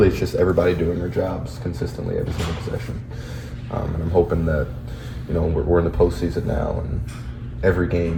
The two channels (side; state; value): both; identical; correlation 1.00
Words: it's just everybody doing their jobs consistently every single possession. And I'm hoping that we're in the postseason now and every